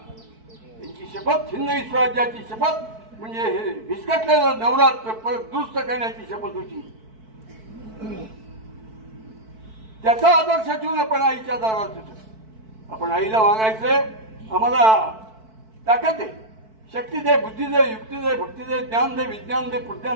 त्यांची शपथ हिंदवी स्वराज्याची शपथ म्हणजे हे विस्कटलेलं नवरात्र परत दुरुस्त करण्याची शपथ होती. त्याचा आदर्श ठेवून आपण आईच्या दारात येतो. आपण आईला मागायचंय, आम्हाला ताकद आहे, शक्ती दे, बुद्धी दे, युक्ती दे, भक्ती दे, ज्ञान दे, विज्ञान दे,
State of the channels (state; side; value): late; left; 4.6 ms